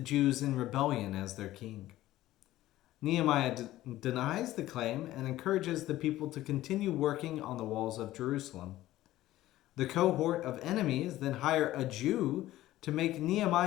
in rebellion as their king. Nehemiah denies the claim and encourages the people to continue working on the walls of Jerusalem. The cohort of enemies then hire a Jew to make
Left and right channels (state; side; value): quieter; right; 15.3 dB